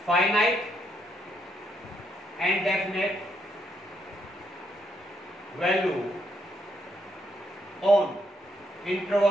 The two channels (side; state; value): both; normal; correlation 0.76